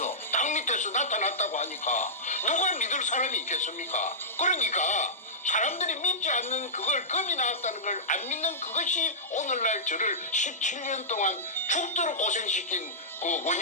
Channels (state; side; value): normal; both; correlation -0.15